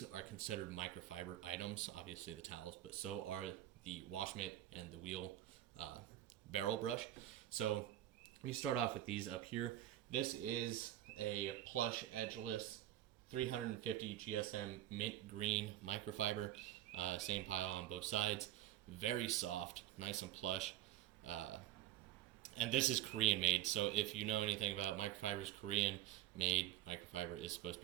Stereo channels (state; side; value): quieter; left; 13.2 dB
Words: are considered microfiber items, obviously the towels, but so are the wash mitt and the wheel barrel brush. So let me start off with these up here. This is a plush edgeless 350 GSM mint green microfiber. Same pile on both sides. Very soft, nice and plush. And this is Korean made, so if you know anything about microfibers, Korean made microfiber is supposed to